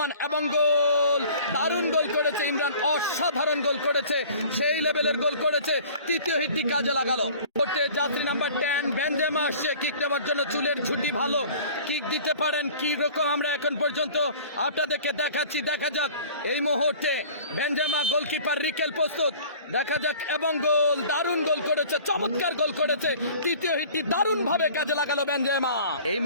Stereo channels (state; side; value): inverted; both; correlation -0.46